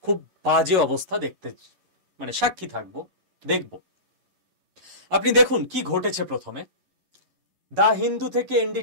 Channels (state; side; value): late; left; 11 ms